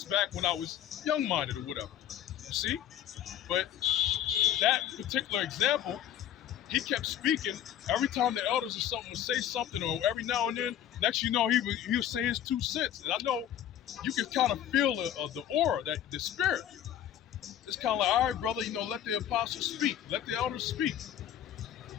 back when I was young-minded or whatever. You see, but that particular example, he kept speaking. Every time the elders or something would say something, or every now and then, next you know, he would say his 2 cents. And I know you can kind of feel the aura, that the spirit. It's kind of like, all right, brother, let the apostles speak, let the elders speak.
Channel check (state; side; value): quieter; right; 10.7 dB